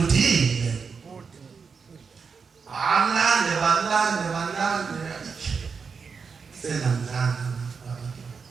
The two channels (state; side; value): quieter; left; 5.5 dB